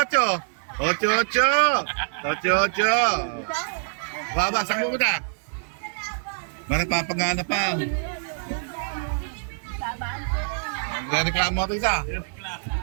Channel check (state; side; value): silent; left; digital silence